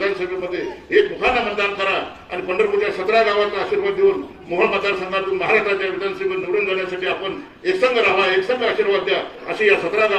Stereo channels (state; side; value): identical; both; correlation 1.00